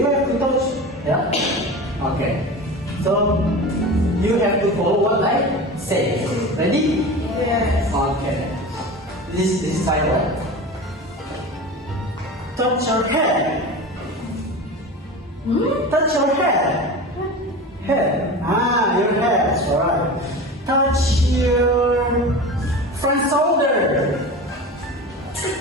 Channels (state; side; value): normal; both; correlation 0.31